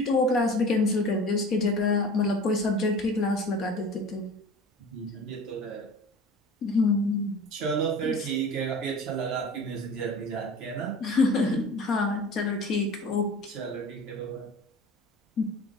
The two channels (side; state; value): both; normal; correlation 0.39